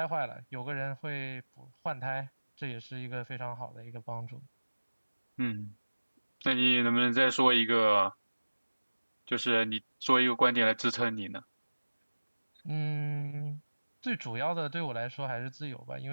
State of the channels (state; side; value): inverted; both; correlation -1.00